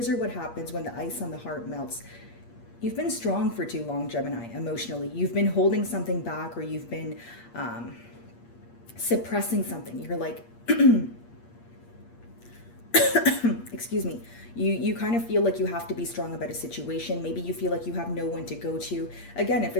are what happens when the ice on the heart melts. You've been strong for too long, Gemini, emotionally. You've been holding something back, or you've been suppressing something. You're like, excuse me. You kind of feel like you have to be strong about a situation. Maybe you feel like you have no one to go to. Again, if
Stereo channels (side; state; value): right; late; 8.5 ms